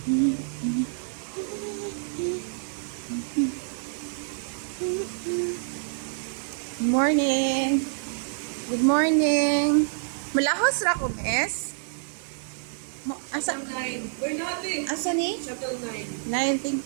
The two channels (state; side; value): silent; left; digital silence